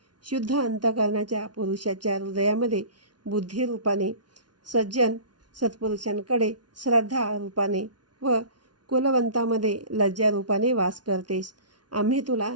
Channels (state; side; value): late; left; 0.69 ms